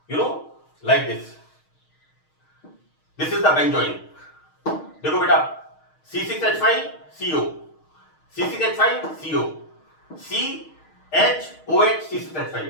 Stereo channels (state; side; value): late; right; 6.4 ms